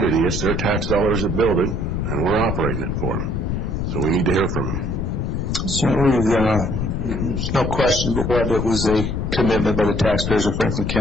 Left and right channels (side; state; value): left; noise; rumble, 1 dB below the sound